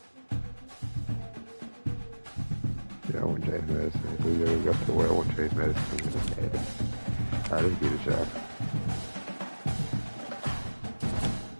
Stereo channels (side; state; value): both; inverted; correlation -1.00